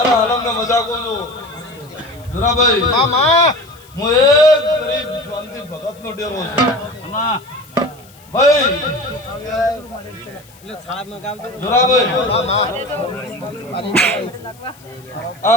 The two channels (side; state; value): left; noise; hiss, 26 dB below the sound